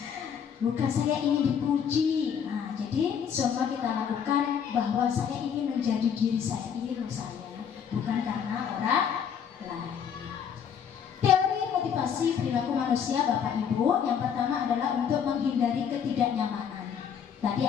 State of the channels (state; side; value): quieter; right; 7.7 dB